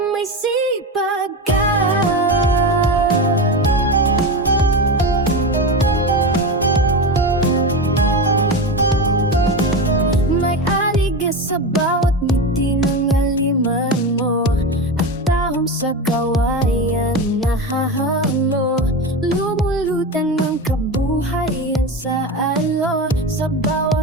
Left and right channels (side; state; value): both; normal; correlation 0.21